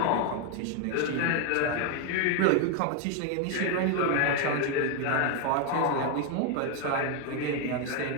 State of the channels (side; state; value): both; different; correlation 0.01